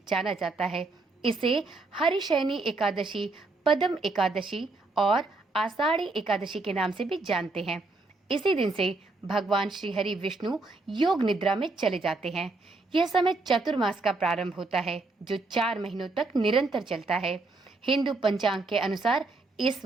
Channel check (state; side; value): quieter; left; 3.4 dB